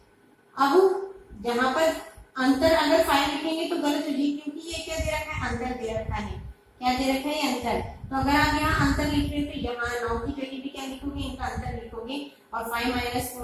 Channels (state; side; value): identical; both; correlation 1.00